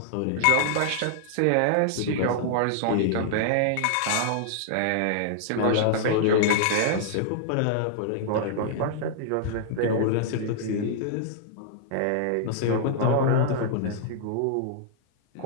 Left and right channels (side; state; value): both; different; correlation -0.01